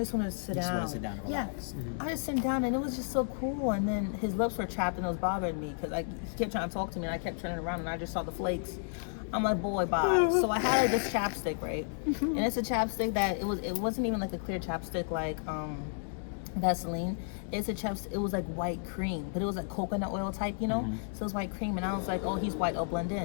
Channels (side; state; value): right; silent; digital silence